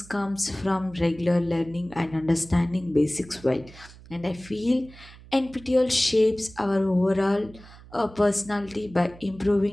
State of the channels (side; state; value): right; noise; hum, 20 dB below the sound